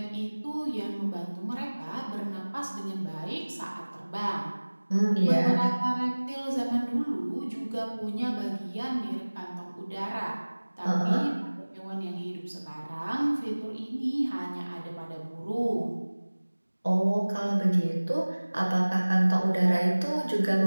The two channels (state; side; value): inverted; both; correlation -1.00